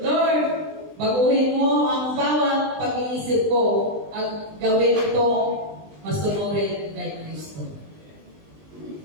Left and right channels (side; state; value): left; late; 20 ms